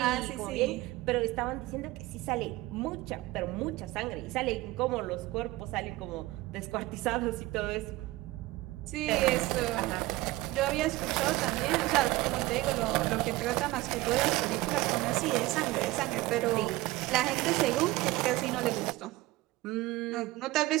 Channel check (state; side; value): quieter; left; 18.8 dB